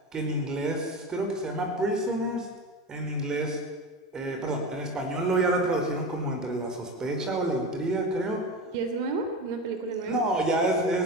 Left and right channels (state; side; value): normal; both; correlation 0.25